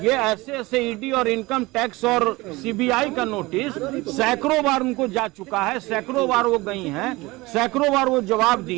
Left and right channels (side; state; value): left; quieter; 21.7 dB